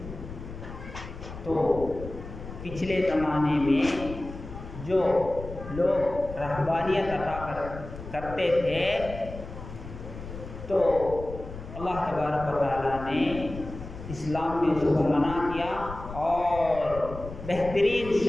تو پچھلے زمانے میں جو لوگ رہبانیت عطا کرتے تھے تو اللہ تبارک و تعالیٰ نے اسلام میں اس کو منع کیا اور بہترین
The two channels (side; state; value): left; noise; rumble, 12 dB below the sound